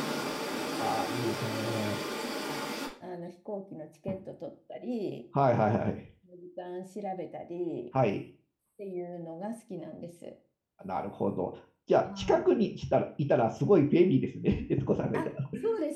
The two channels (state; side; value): identical; both; correlation 1.00